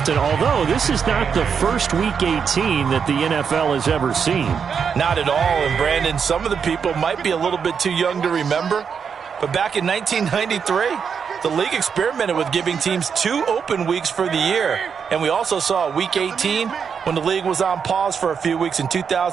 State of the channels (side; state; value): left; quieter; 6.6 dB